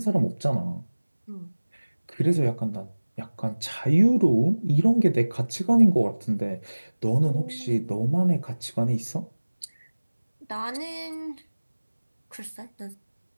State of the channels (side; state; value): both; inverted; correlation -1.00